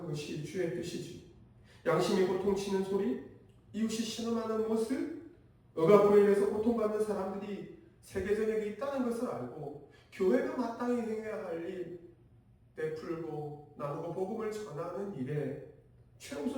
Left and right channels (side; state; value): both; identical; correlation 1.00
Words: 것이 주의 뜻이지. 양심이 고통치는 소리, 이웃이 신음하는 모습, 억압으로 인해서 고통받는 사람들이 세계전역에 있다는 것을 알고 교회가 마땅히 행해야 할 일, 베풀고 나누고 복음을 전하는 일에